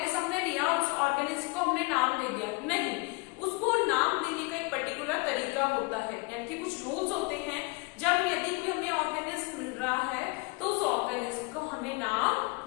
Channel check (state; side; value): quieter; right; 28.5 dB